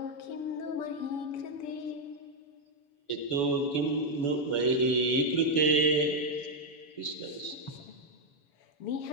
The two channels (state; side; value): late; right; 7.0 ms